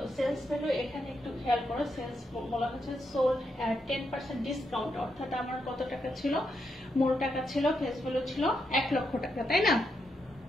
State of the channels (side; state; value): both; normal; correlation 0.81